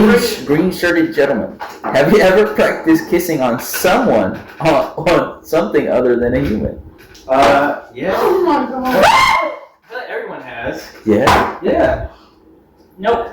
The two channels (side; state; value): both; identical; correlation 1.00